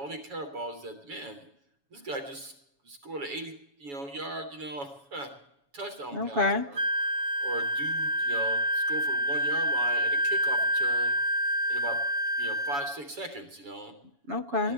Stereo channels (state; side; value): late; left; 7.1 ms